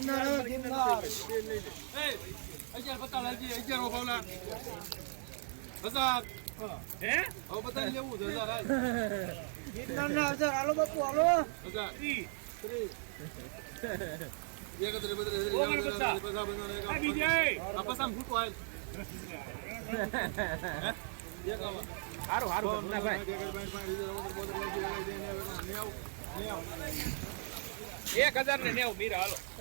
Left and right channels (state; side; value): silent; left; 53 dB below the other